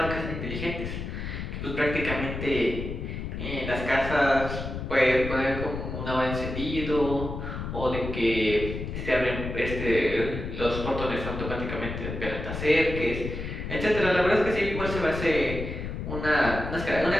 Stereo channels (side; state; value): left; noise; rumble, 6 dB below the sound